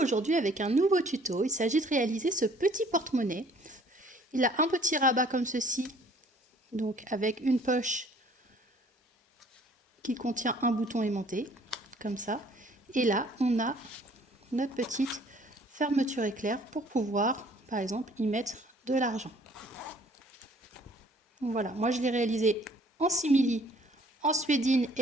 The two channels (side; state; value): both; normal; correlation 0.57